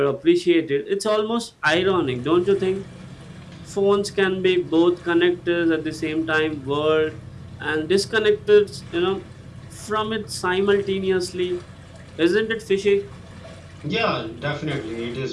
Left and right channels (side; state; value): both; identical; correlation 1.00